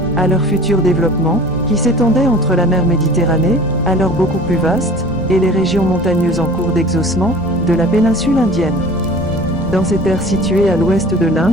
à leur futur développement, qui s'étendait entre la mer Méditerranée, alors beaucoup plus vaste, et les régions montagneuses en cours d'exhaussement, de la péninsule indienne. Dans ces terres situées à l'ouest de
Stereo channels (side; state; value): both; normal; correlation 0.43